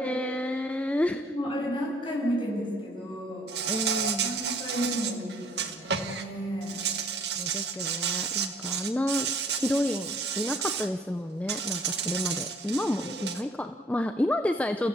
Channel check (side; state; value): both; normal; correlation 0.60